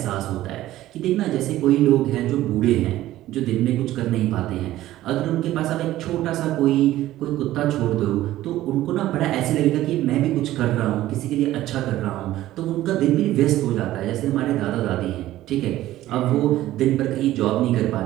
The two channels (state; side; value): quieter; left; 14.8 dB